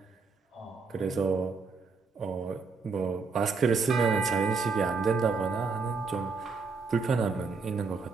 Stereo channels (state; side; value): quieter; left; 4.6 dB